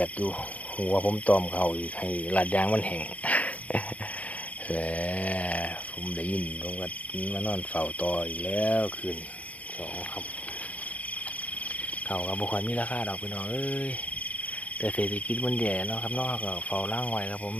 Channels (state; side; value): late; right; 0.069 ms